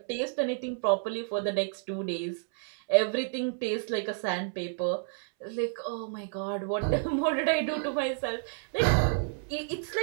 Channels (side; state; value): left; silent; 58 dB below the other